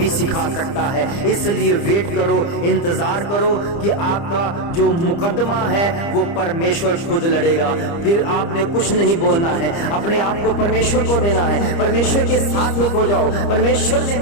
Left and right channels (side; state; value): right; late; 30 ms